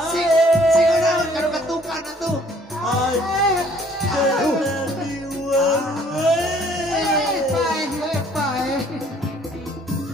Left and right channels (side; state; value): both; normal; correlation 0.59